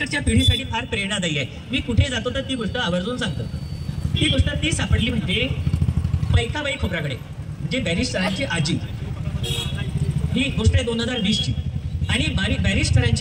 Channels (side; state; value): both; identical; correlation 1.00